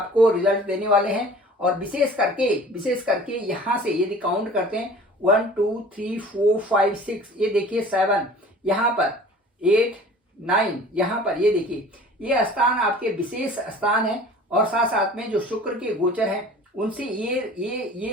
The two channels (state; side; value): normal; both; correlation 0.45